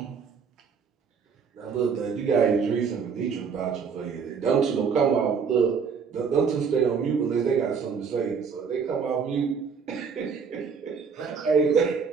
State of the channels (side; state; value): left; quieter; 6.0 dB